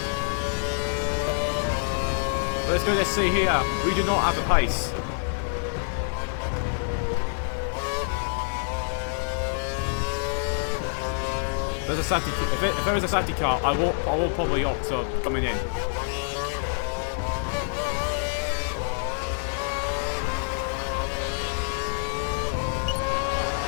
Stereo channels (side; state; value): right; silent; 57 dB below the other